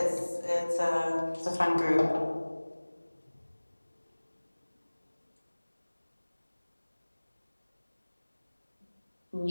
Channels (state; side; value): inverted; both; correlation -1.00